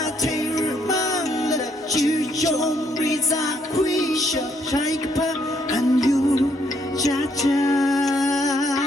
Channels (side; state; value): both; normal; correlation 0.71